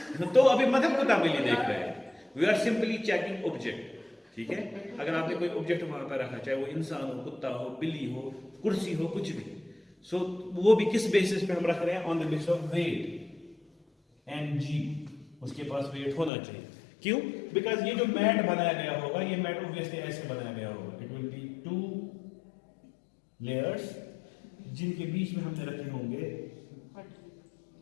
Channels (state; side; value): drops out; right; at 16.3 s